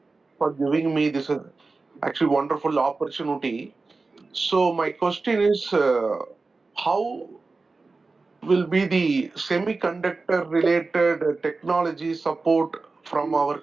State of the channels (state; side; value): quieter; left; 3.8 dB